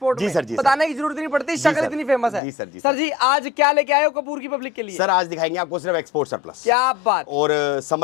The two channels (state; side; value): drops out; right; at 2.4 s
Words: जी में। सर, जी बताने की जरूरत नहीं पड़ती, शक्ल इतनी फेमस है। जी सर, जी सर जी आज क्या लेके आए हो कपूर की पब्लिक के लिए? सर आज दिखाएंगे आपको सिर्फ एक्सपोर्ट सरप्लस। क्या बात। और